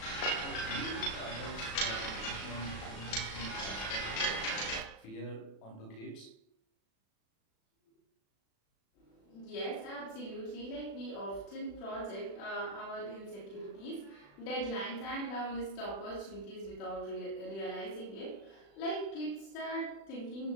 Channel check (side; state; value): right; late; 36 ms